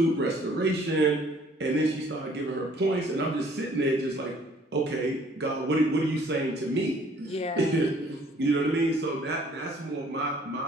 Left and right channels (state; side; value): normal; both; correlation 0.58